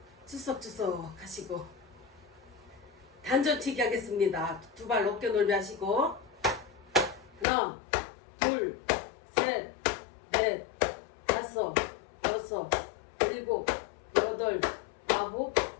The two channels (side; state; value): right; drops out; at 7.5 s